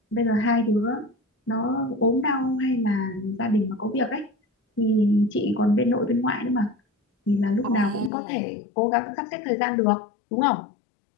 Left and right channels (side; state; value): right; drops out; at 8.1 s